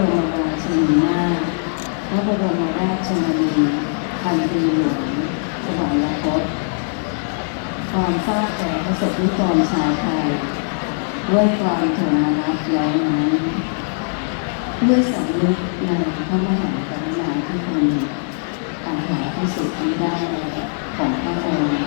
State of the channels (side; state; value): right; silent; digital silence